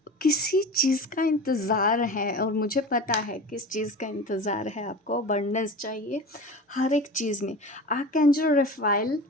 किसी चीज़ का इंतज़ार है, और मुझे पता है किस चीज़ का इंतज़ार है। आपको अबंडेंस चाहिए हर एक चीज़ में। आर्कएंजल रफाइल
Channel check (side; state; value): both; normal; correlation 0.32